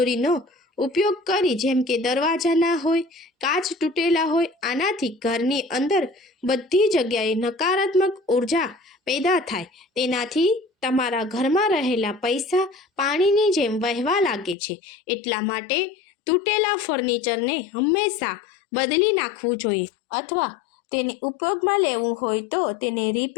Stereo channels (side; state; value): right; drops out; at 14.6 s